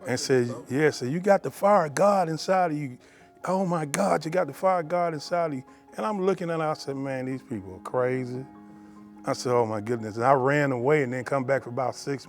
And said, yeah, so you got the fire of God inside of you. Oh my God, you got the fire of God inside of you. And I'm looking at her, I said, man, these people are crazy. I said, oh my goodness. And I ran away and then come back for about 6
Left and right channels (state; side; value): identical; both; correlation 1.00